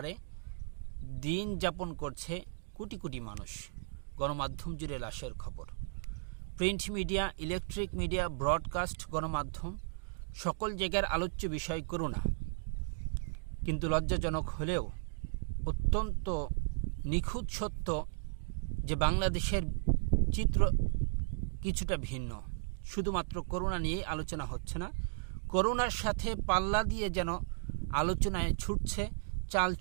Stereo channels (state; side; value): silent; left; digital silence